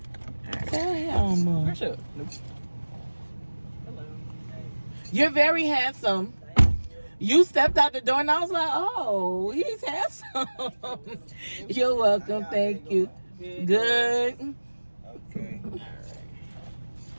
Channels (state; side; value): inverted; both; correlation -1.00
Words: Tell him. Brush up. Nope. Hello. You're very handsome. You stepped out the door and I was like, oh, he's handsome. You're welcome. Thank you. Good. Okay. All right.